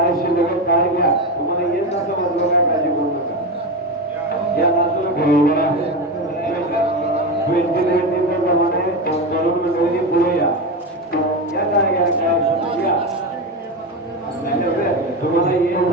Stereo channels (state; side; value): normal; both; correlation 0.17